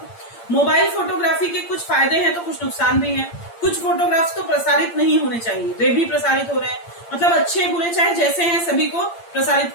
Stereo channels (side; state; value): right; late; 8.7 ms